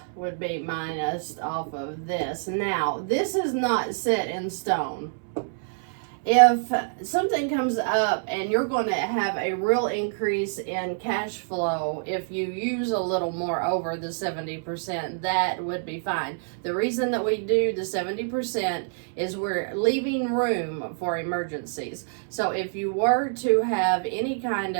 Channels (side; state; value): left; silent; 61 dB below the other